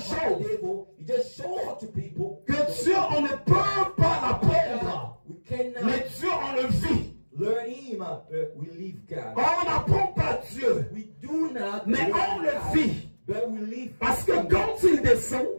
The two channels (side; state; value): both; inverted; correlation -1.00